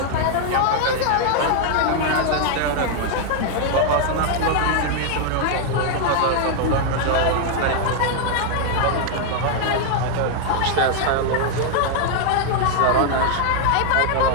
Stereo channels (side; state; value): both; different; correlation 0.00